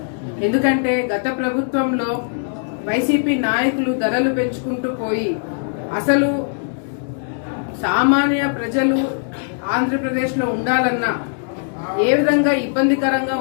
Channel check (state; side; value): silent; right; digital silence